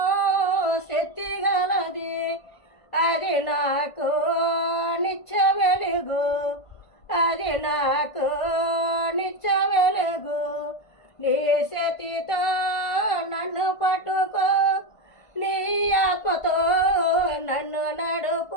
శక్తి గలది, అది నాకు నిత్య వెలుగు, అది నాకు నిత్య వెలుగు. నీ శక్తితో నన్ను పట్టుకో, నీ ఆత్మతో నన్ను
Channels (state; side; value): late; right; 1.5 ms